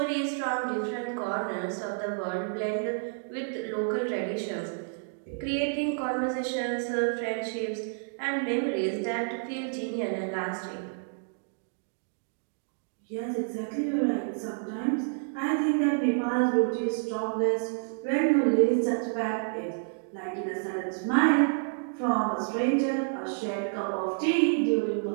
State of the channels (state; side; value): silent; left; digital silence